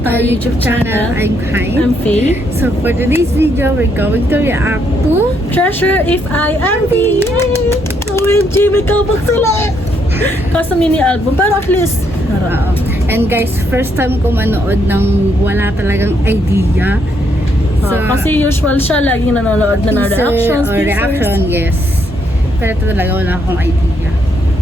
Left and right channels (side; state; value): both; normal; correlation 0.74